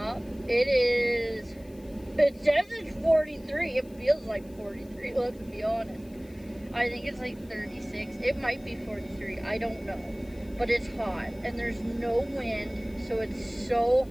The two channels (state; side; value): noise; left; hiss, 27 dB below the sound